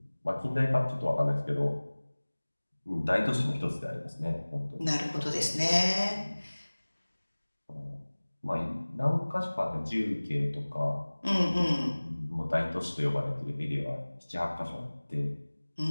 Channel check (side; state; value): both; inverted; correlation -1.00